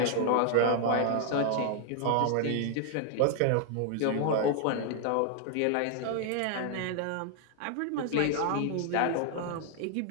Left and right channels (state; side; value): different; both; correlation 0.00